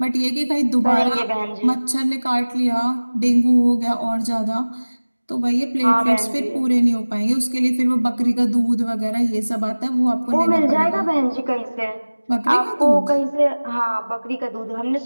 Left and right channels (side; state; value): both; inverted; correlation -1.00